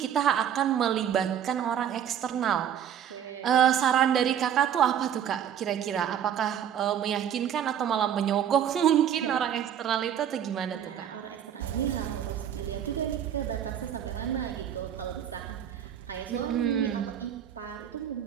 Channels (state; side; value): quieter; left; 9.4 dB